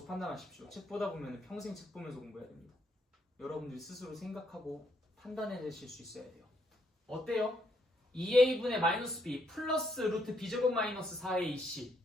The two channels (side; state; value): both; normal; correlation 0.73